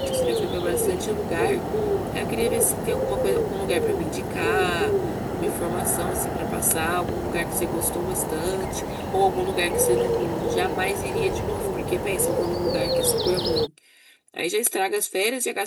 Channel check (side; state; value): both; identical; correlation 1.00